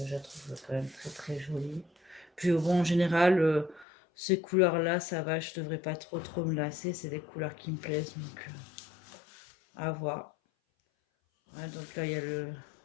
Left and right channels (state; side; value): drops out; right; at 3.9 s